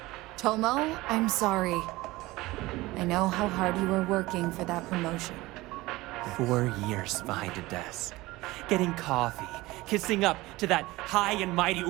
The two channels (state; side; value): quieter; left; 19.7 dB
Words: Tomo, I'm sorry. I know how hard you were working for that promotion. 4 years behind a desk, getting coffee, kissing up to that high and mighty